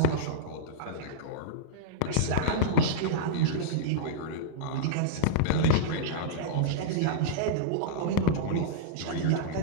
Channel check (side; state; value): both; different; correlation -0.03